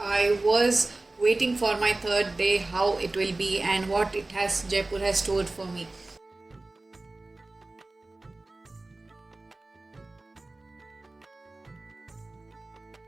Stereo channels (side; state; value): left; quieter; 3.0 dB